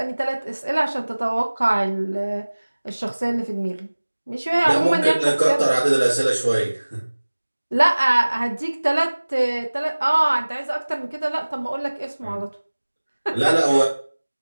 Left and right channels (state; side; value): inverted; both; correlation -1.00